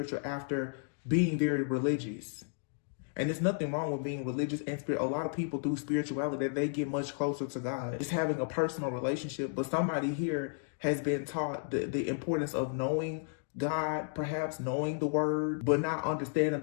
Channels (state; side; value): silent; right; digital silence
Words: after being very religious. And there's nothing wrong with being religious and spirit. A lot of people through spirituality, they get much closer to God. It's having a personal relationship. But somebody here has been taught the importance of knowing God, perhaps knowing the word, but not understanding